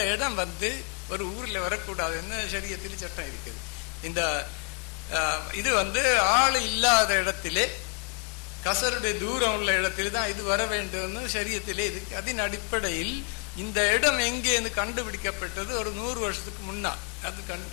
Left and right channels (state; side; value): quieter; right; 39.7 dB